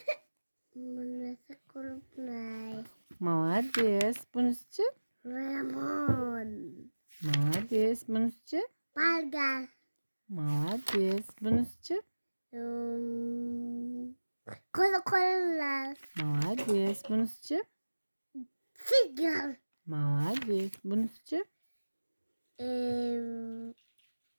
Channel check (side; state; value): both; inverted; correlation -1.00